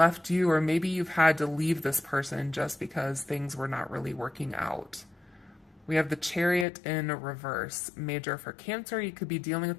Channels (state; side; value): drops out; right; at 6.7 s